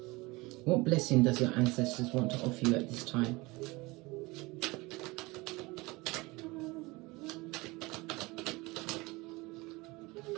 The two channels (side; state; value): left; quieter; 23.1 dB